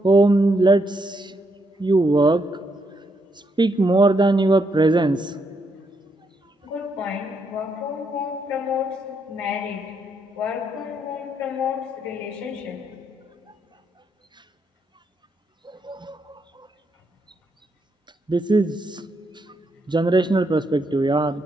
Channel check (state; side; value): normal; both; correlation 0.77